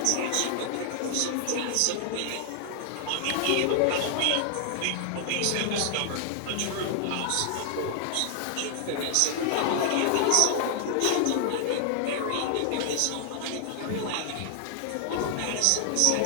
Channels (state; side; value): different; both; correlation 0.00